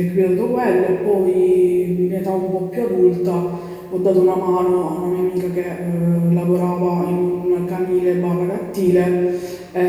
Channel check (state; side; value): identical; both; correlation 1.00